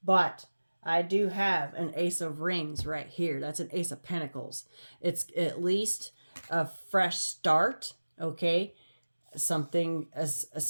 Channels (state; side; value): inverted; both; correlation -1.00